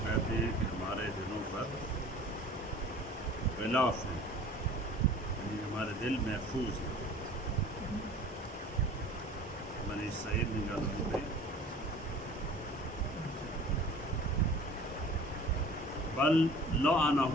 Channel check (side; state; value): both; normal; correlation 0.45